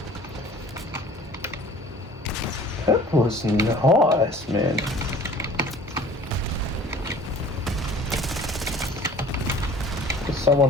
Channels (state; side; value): normal; both; correlation 0.48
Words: That was nice, man. There's